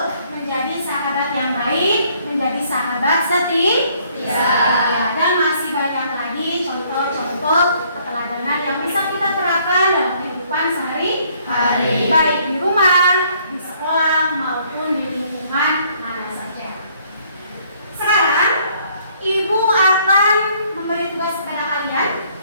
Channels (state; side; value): inverted; both; correlation -0.64